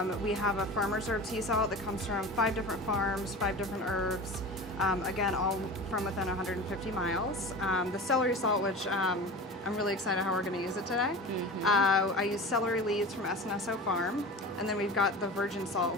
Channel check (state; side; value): normal; both; correlation 0.33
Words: We have a farmer's herb sea salt that comes from 5 different farms, 5 different herbs, again, all from within 150 miles. The celery salt, which I'm really excited how we're going to use it today. I use celery leaves from S&SO Farm. And then we've got the virgin salt,